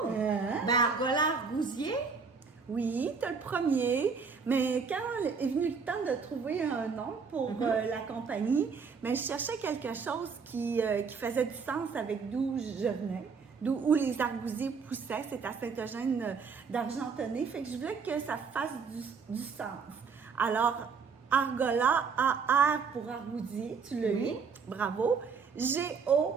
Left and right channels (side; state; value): left; quieter; 5.5 dB